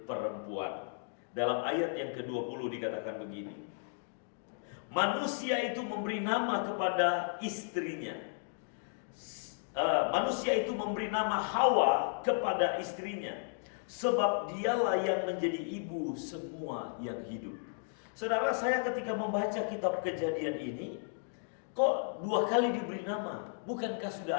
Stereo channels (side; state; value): right; silent; digital silence